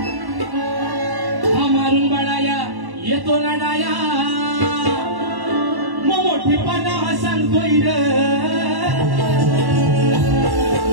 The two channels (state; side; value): late; left; 1.1 ms